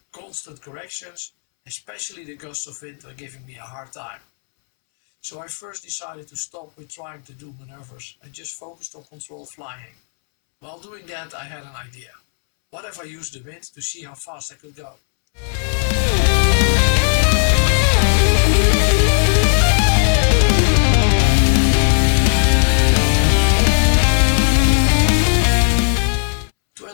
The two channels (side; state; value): right; silent; 68 dB below the other